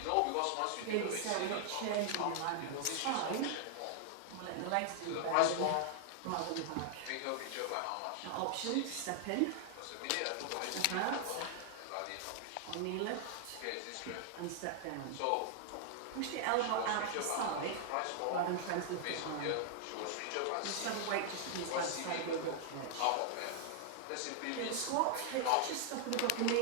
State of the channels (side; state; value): both; different; correlation 0.00